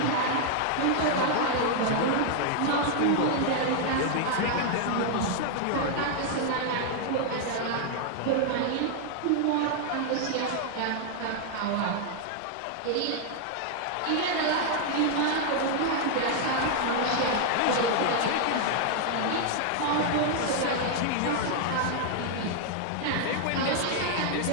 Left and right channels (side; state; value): both; different; correlation 0.00